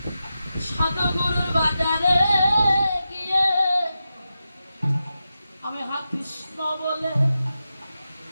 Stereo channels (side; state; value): both; inverted; correlation -0.90